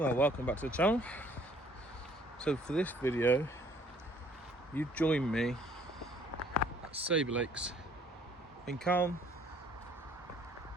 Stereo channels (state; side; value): normal; both; correlation 0.60